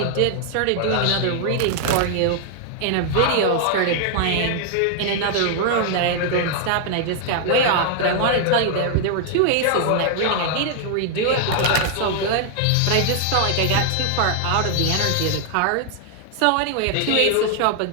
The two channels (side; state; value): both; different; correlation 0.00